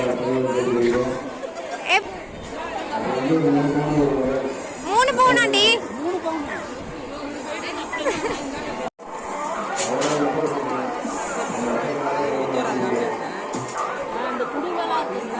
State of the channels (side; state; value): both; identical; correlation 1.00